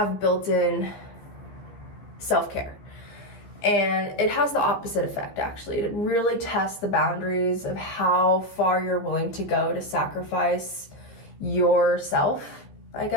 built-in self-care. And it has the opposite effect, actually. It really tests the boundaries of how far you're willing to go to sacrifice yourself, I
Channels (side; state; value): right; late; 15 ms